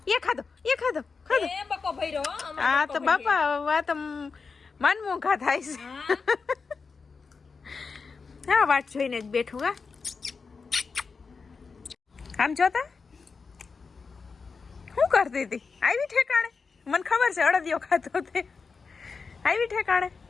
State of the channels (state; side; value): quieter; right; 4.9 dB